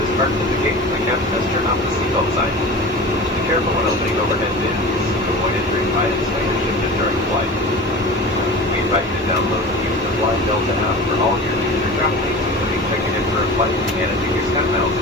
parked at the gate and the captain has turned off the seatbelt sign. Be careful when opening overhead bins to avoid injuring items when you're shifted during flight. We invite you to download and use the Fly Delta app for all your future travel needs, including checking in for a flight and managing your SkyMiles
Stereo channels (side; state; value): both; normal; correlation 0.34